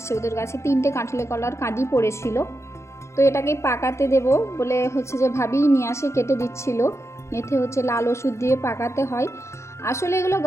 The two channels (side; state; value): right; late; 0.14 ms